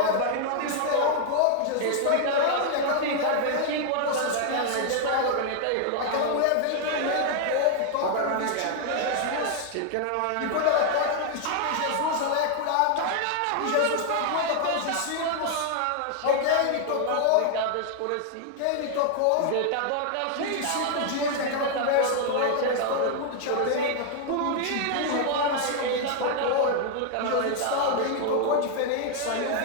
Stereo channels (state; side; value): different; both; correlation 0.00